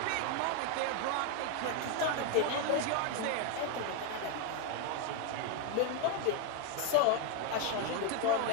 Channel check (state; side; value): different; both; correlation 0.00